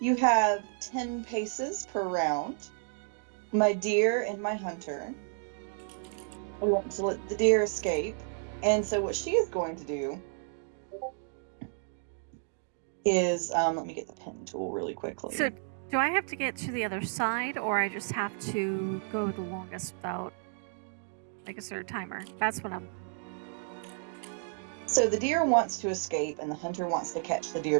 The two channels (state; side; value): silent; left; 57 dB below the other